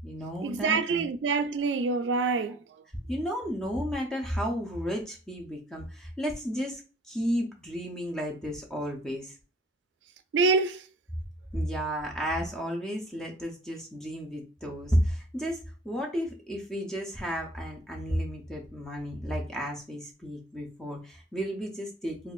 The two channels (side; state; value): both; normal; correlation 0.50